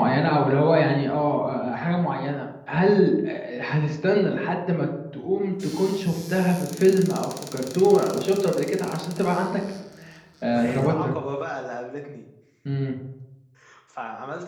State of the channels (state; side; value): identical; both; correlation 1.00